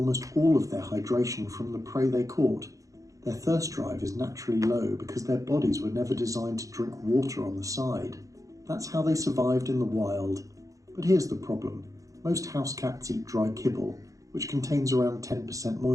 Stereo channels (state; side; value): late; left; 0.16 ms